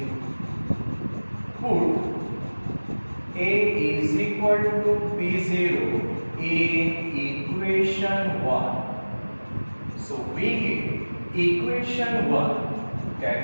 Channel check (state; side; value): inverted; both; correlation -1.00